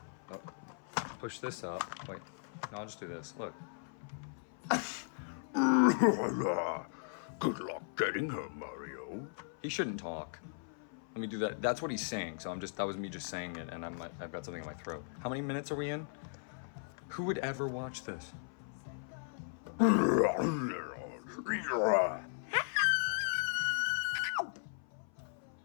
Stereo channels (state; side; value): silent; right; 53 dB below the other